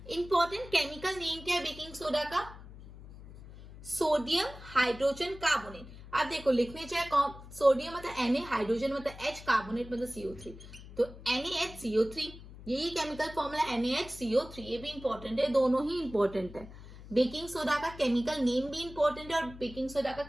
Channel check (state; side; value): noise; left; hum, 16 dB below the sound